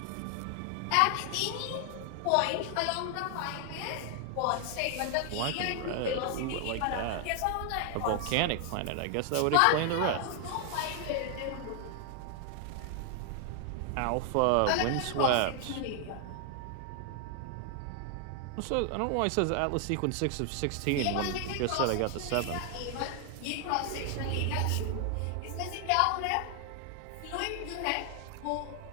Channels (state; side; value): different; both; correlation 0.00